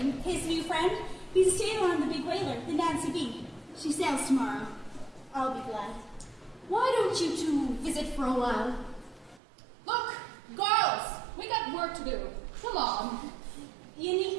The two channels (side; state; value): left; drops out; at 9.4 s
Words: His new friend, he's a sailor on the big whaler, the Nancy B. She sails tomorrow. I'll be glad. Why don't you two visit for a while? Look, girls, we got work to do. Come on. You need